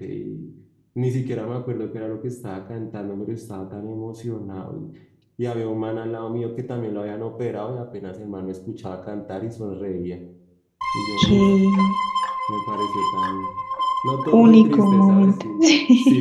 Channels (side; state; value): both; identical; correlation 1.00